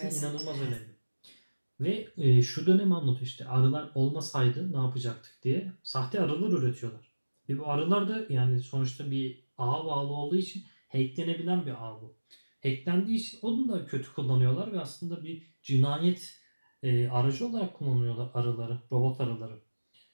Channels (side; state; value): both; inverted; correlation -1.00